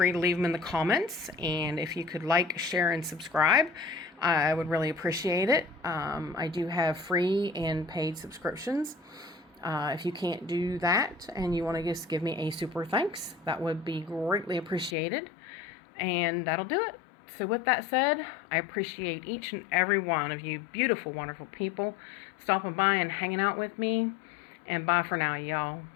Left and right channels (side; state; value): right; drops out; at 15.0 s